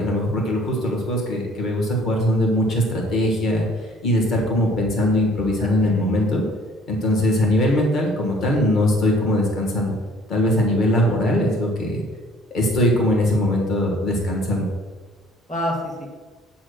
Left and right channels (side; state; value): both; normal; correlation 0.56